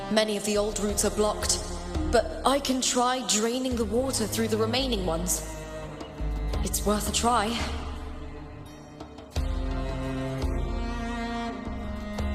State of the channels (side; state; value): both; identical; correlation 1.00